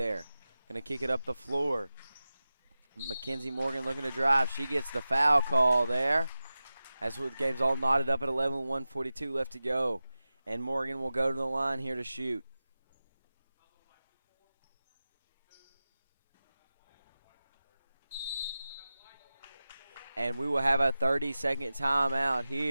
Going to kick it up the floor. Mackenzie Morgan looking to drive. She gets the foul call there. As the game's all knotted up at 11, 1:42 left to go. And Morgan will go to the line here to shoot. And we will have a 30-second timeout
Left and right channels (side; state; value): both; inverted; correlation -0.95